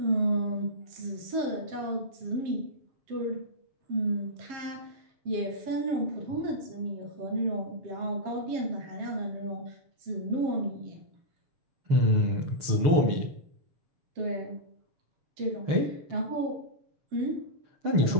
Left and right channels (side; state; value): left; late; 6.7 ms